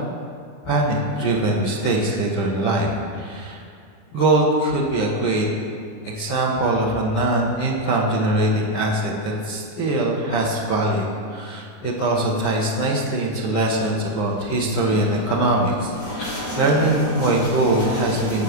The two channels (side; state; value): right; late; 29 ms